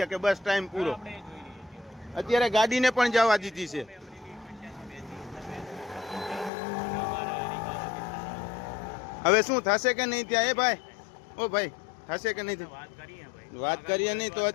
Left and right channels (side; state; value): right; drops out; at 6.5 s